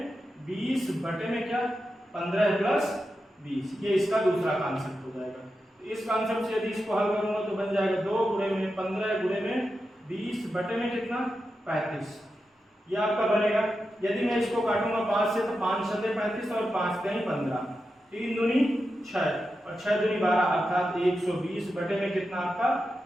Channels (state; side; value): normal; both; correlation 0.89